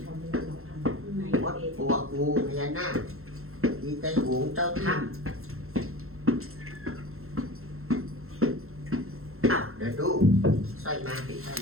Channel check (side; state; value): left; late; 0.62 ms